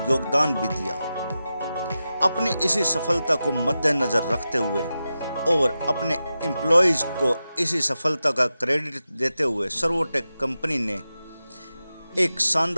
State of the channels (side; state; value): both; inverted; correlation -0.92